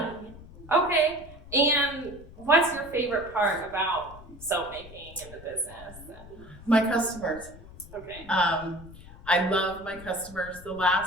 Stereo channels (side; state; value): left; noise; rumble, 18 dB below the sound